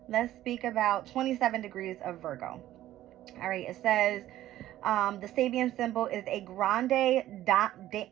Let's speak about 27 degrees of Virgo. All right, it says the Sabian symbol is a grande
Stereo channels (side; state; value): left; quieter; 13.8 dB